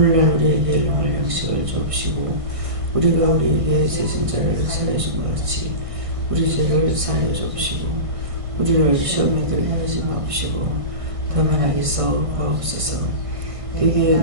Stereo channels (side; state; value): left; late; 1.6 ms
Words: 우리에게 일용할 양식을 주옵시고 우리가 우리에게 죄진 자를 사하여 준 것 같이 우리 죄를 사하여 주옵시고 우리를 시험에 들게 하지 마옵시고 다만 악에서 구하옵소서. 되게